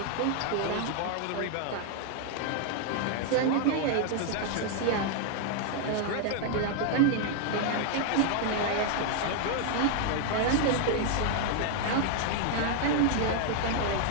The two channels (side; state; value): both; different; correlation 0.00